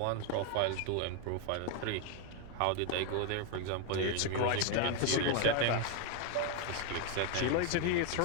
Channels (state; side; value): different; both; correlation 0.01